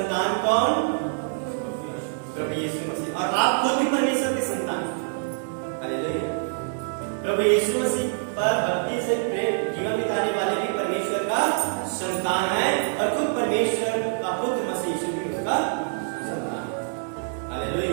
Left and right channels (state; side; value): silent; left; digital silence